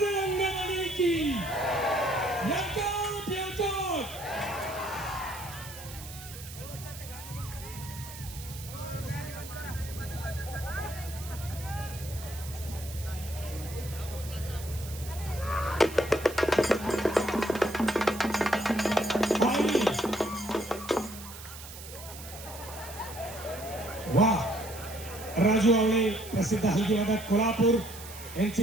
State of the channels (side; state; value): right; noise; hiss, 14 dB below the sound